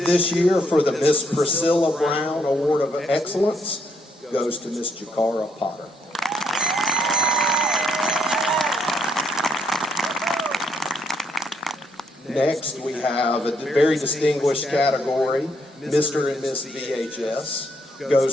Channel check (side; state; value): both; normal; correlation 0.73